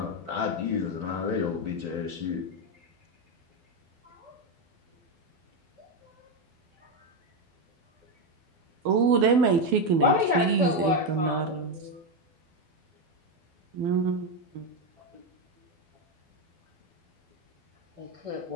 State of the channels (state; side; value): late; left; 12 ms